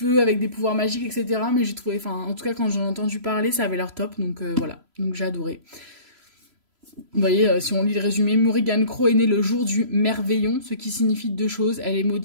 avec des pouvoirs magiques, etc. Mais j'ai trouvé, enfin, en tout cas, quand j'en ai entendu parler, ça avait l'air top. Donc voilà, donc j'ai adoré. Vous voyez, si on lit le résumé, Morrigan Crow est née le jour du merveillon, ce qui signifie 2 choses. Elle est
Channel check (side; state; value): left; late; 3.0 ms